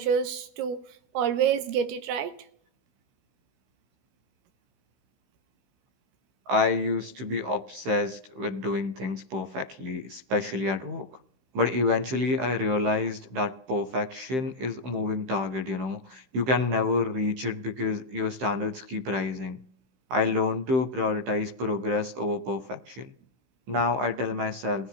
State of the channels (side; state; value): left; late; 15 ms